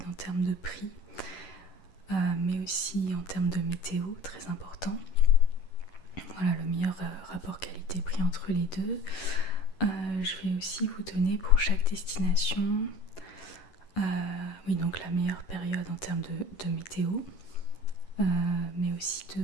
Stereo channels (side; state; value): right; late; 11 ms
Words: en termes de prix, mais aussi en termes de météo, très important. Voilà, le meilleur rapport qualité-prix entre les deux. Je vais aussi vous donner pour chaque destination, oui, donc la meilleure période en termes de météo, mais aussi